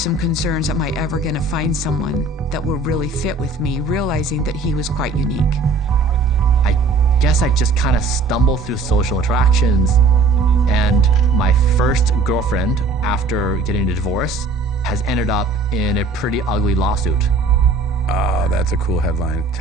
concerns, am I ever gonna find someone that will really fit with me, realizing that he was quite unique. I guess I just kind of stumbled through social interactions, and my first girlfriend, after getting a divorce, has ended up in a pretty ugly lawsuit. Oh, that's a cool headline.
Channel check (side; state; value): left; quieter; 3.6 dB